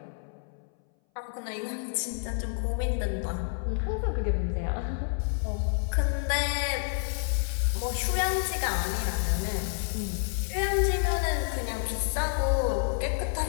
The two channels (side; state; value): right; silent; 59 dB below the other